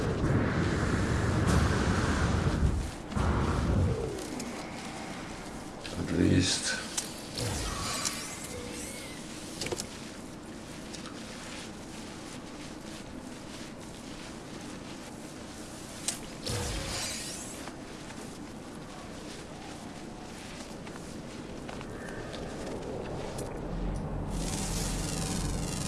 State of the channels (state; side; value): identical; both; correlation 1.00